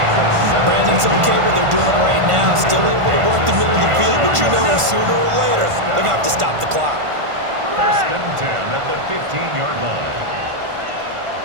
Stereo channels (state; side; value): late; left; 1.5 ms